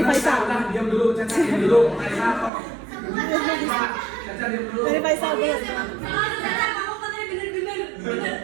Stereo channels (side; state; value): left; drops out; at 2.5 s